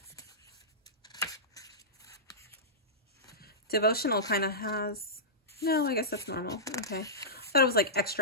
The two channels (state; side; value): normal; both; correlation -0.16